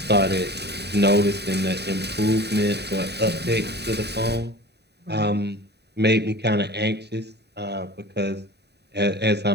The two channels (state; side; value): late; left; 0.48 ms